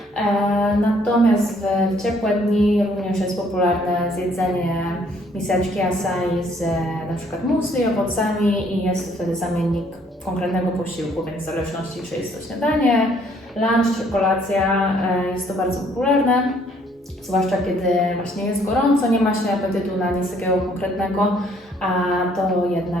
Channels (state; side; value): normal; both; correlation 0.64